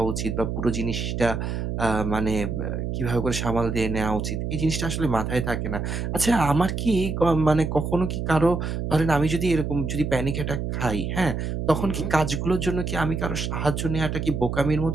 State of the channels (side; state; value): right; noise; hum, 3 dB below the sound